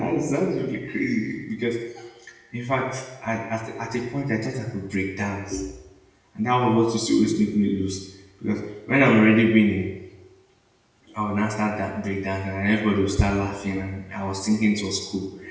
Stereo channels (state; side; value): identical; both; correlation 1.00